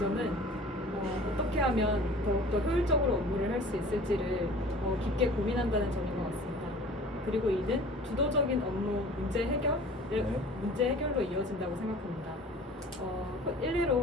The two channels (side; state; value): both; normal; correlation 0.44